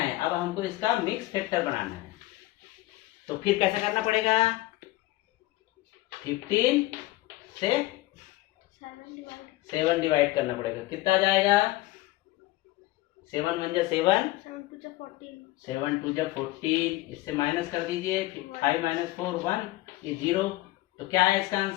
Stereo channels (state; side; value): quieter; right; 17.8 dB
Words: अब हमको इसका मिक्स फैक्टर बनाना है। तो फिर कैसा करना पड़ेगा, 15 से 7 डिवाइड करना पड़ेगा, कितना आ जाएगा 7 1 जा 7, 7 2 जा 14, इससे माइनस कर दीजिए, 5 - 4 1, ये 0। तो क्या है इसका